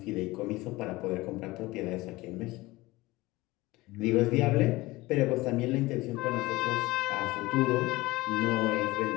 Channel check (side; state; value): right; quieter; 20.2 dB